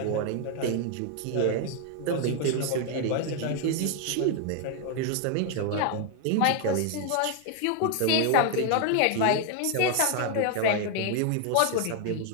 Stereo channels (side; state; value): both; different; correlation 0.00